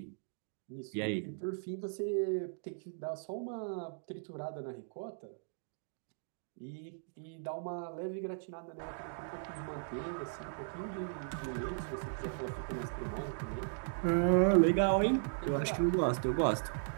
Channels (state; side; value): silent; left; digital silence